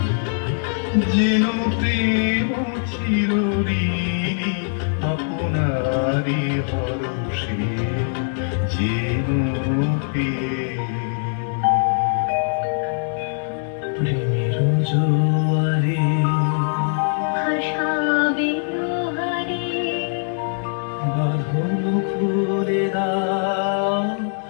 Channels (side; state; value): right; silent; digital silence